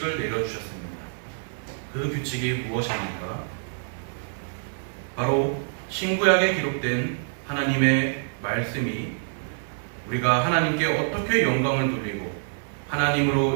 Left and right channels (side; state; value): left; silent; 61 dB below the other